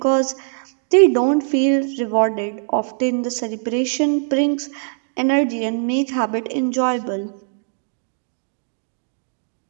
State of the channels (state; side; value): silent; left; digital silence